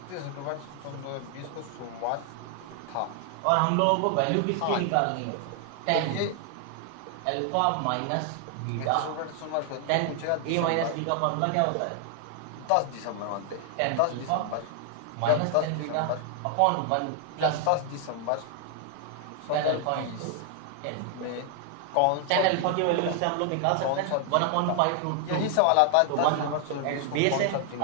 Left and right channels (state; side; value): different; both; correlation 0.00